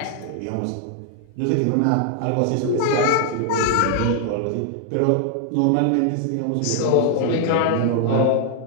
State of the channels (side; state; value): both; different; correlation 0.00